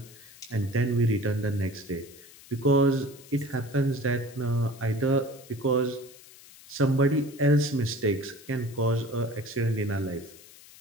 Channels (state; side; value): noise; left; hiss, 21 dB below the sound